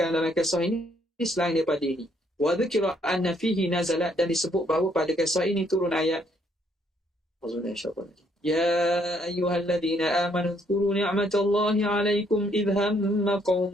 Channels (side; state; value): both; normal; correlation 0.69